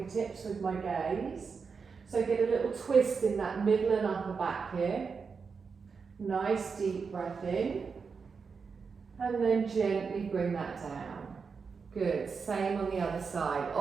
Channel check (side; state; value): left; quieter; 5.4 dB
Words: with my gaze. So get a little twist in that middle and upper back here. Nice deep breath in. And then gently bring that down. Good. Same on the other side.